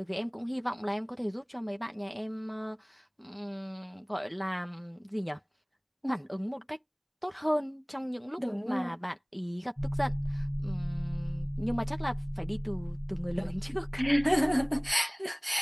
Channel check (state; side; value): identical; both; correlation 1.00